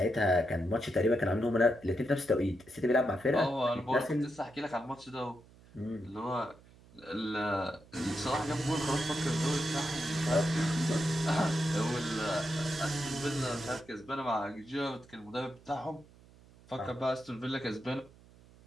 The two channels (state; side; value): noise; right; hum, 25 dB below the sound